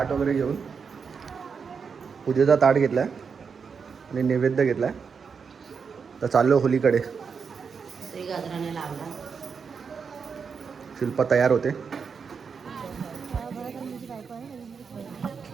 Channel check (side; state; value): left; quieter; 5.9 dB